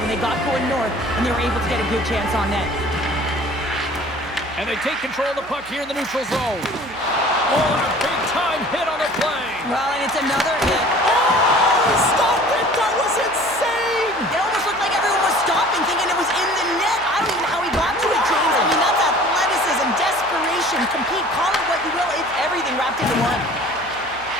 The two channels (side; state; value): right; noise; hum, 23 dB below the sound